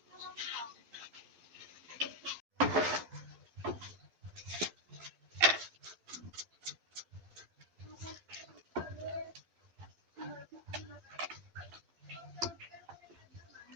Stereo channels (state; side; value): late; left; 12 ms